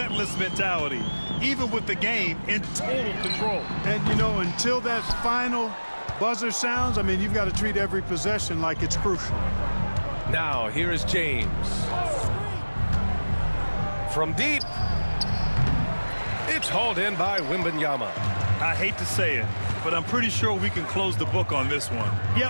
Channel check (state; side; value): inverted; both; correlation -1.00